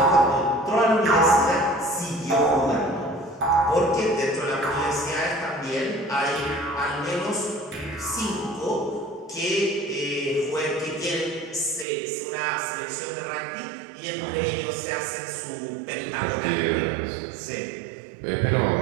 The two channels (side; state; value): left; drops out; at 11.9 s